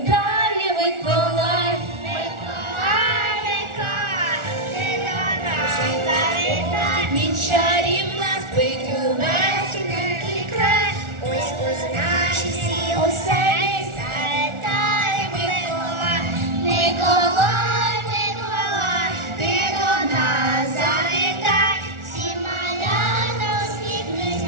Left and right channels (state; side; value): late; left; 1.4 ms